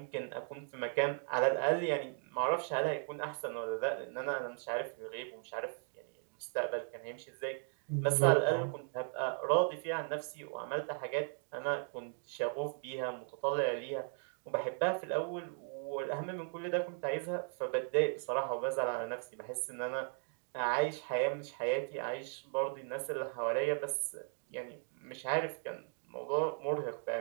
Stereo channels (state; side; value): silent; left; 53 dB below the other